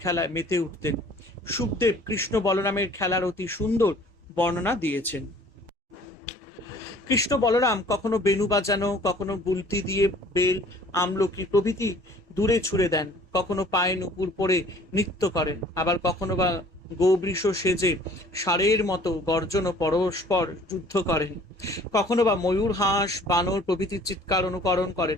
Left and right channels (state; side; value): normal; both; correlation 0.52